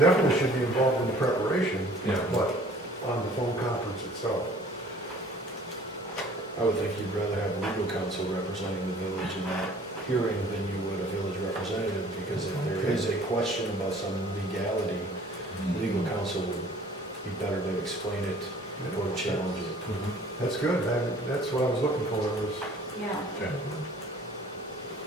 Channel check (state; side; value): normal; both; correlation 0.52